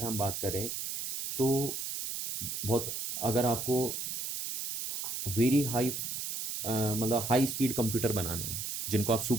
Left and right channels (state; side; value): noise; right; hiss, 4 dB below the sound